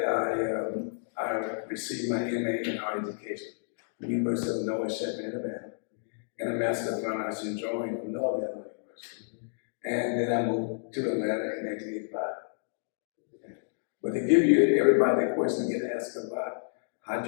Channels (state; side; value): silent; right; digital silence